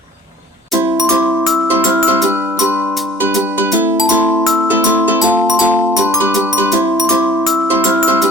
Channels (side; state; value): both; normal; correlation 0.52